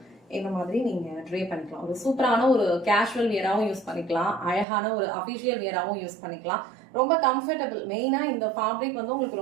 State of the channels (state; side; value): drops out; left; at 4.7 s